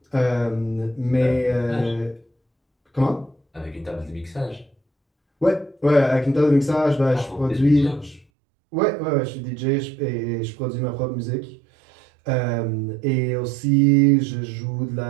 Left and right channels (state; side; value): drops out; left; at 8.2 s